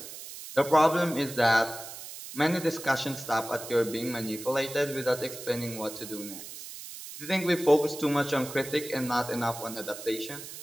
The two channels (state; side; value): noise; right; hiss, 12 dB below the sound